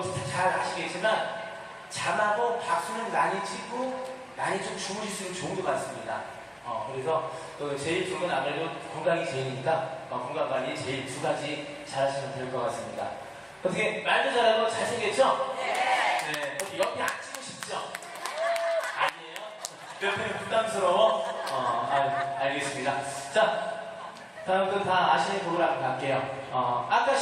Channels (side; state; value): both; identical; correlation 1.00